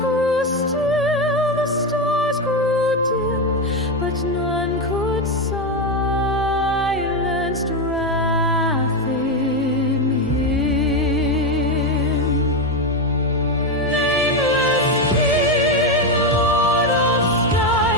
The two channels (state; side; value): normal; both; correlation 0.10